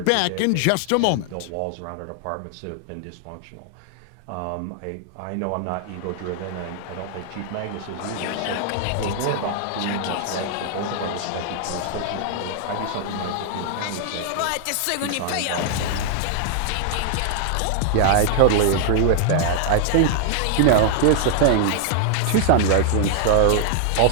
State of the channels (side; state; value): both; different; correlation -0.01